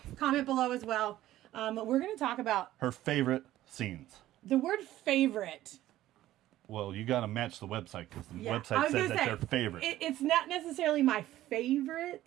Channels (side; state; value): left; quieter; 14.4 dB